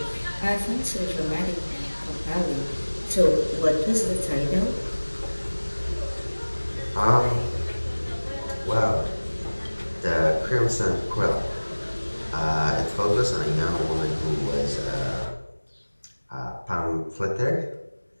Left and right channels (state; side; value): inverted; both; correlation -1.00